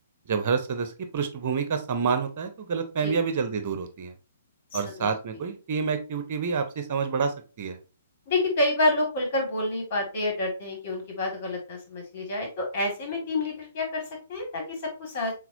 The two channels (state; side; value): inverted; both; correlation -0.55